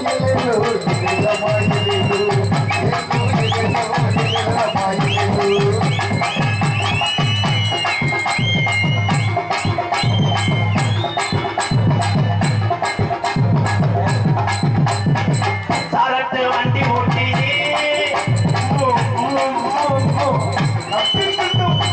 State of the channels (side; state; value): both; identical; correlation 1.00